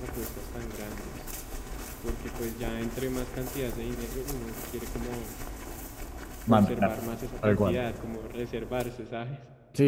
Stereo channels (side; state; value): both; identical; correlation 1.00